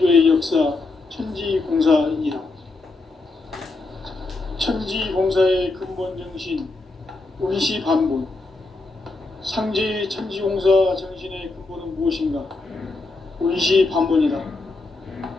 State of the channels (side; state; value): right; quieter; 3.4 dB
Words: 역사 천지공사이니라. 천지공사의 근본 정신 운시반본. 상제의 천지공사 정신의 근본은 무엇인가? 운시반본이다.